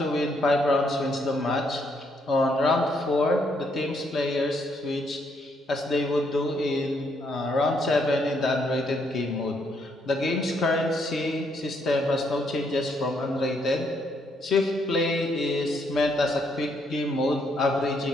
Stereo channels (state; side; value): normal; both; correlation 0.73